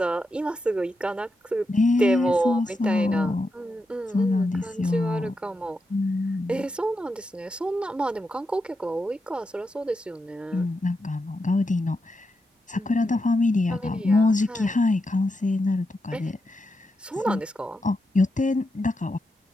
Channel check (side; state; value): both; normal; correlation 0.86